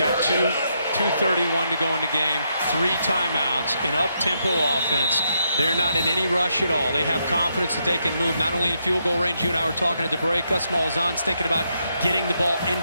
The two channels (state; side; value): inverted; both; correlation -0.79